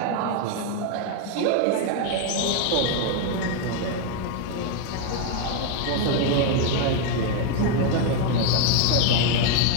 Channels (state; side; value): different; both; correlation 0.01